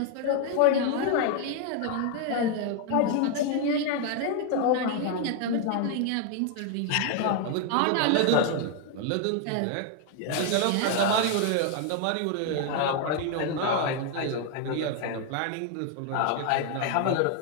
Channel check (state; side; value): different; both; correlation 0.00